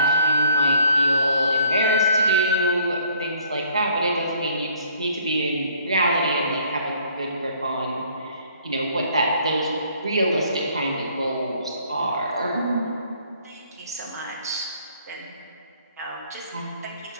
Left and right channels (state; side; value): inverted; both; correlation -0.60